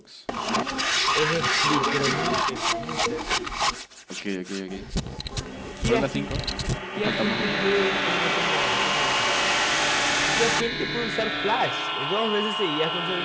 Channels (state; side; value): identical; both; correlation 1.00